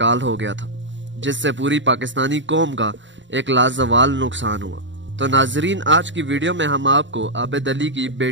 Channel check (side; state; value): left; late; 0.54 ms